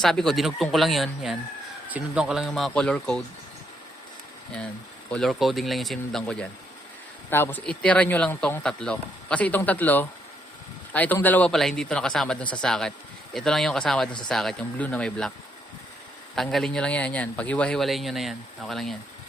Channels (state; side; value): normal; both; correlation 0.74